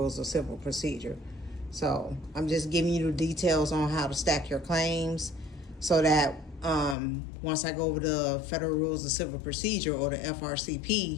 of Civil Procedure. So I'm just giving you the details on how to stack your claims, so that once I go over the Federal Rules of Civil Procedure, or the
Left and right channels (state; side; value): drops out; right; at 7.0 s